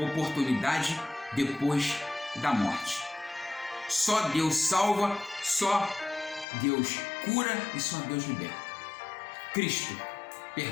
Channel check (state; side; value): drops out; right; at 6.5 s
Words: depois da morte. Só Deus salva, só Deus cura e só Deus liberta.